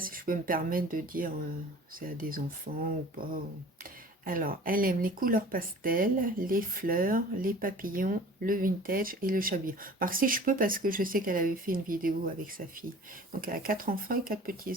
je peux me permettre de dire c'est à des enfants ou pas. Alors, elle aime les couleurs pastel, les fleurs, les papillons, le vintage et le chabillon. Alors, si je peux, parce que je sais qu'elle avait fait une vidéo avec sa fille. Donc, elle a 4 enfants et 4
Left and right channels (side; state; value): both; normal; correlation 0.45